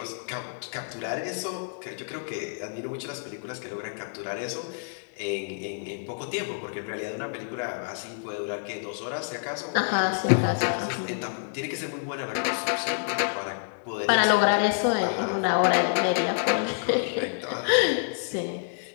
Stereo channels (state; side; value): silent; right; digital silence